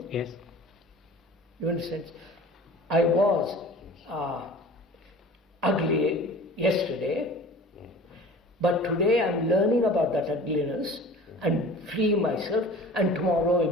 Yes. You understand? I was ugly yesterday, but today I'm learning about that ugliness and freeing myself, and tomorrow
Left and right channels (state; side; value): normal; both; correlation 0.42